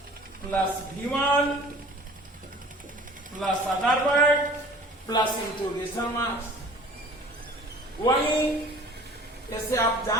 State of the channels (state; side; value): normal; both; correlation 0.46